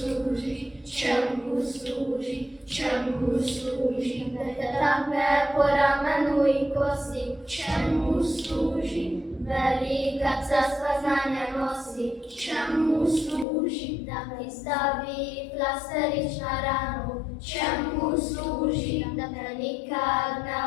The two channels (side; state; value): right; drops out; at 13.5 s